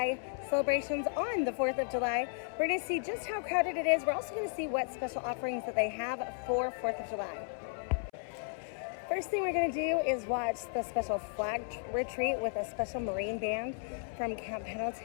celebrations on the 4th of July. We're going to see just how crowded it is. We're also going to see what special offerings that they have for 4th of July. First thing we're going to do is watch the special flag retreat with a special Marine band from Camp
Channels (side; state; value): right; silent; 55 dB below the other